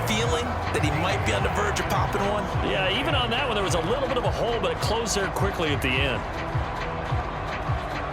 feeling that he might be on the verge of popping one. Yeah, even on that one, there was a little bit of a hole, but it closed there quickly at the end.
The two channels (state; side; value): identical; both; correlation 1.00